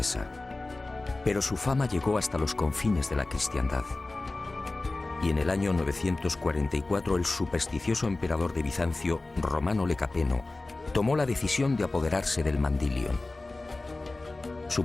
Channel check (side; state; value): right; quieter; 3.1 dB